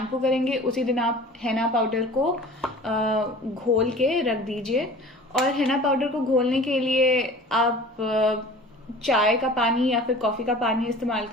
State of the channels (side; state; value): both; normal; correlation 0.42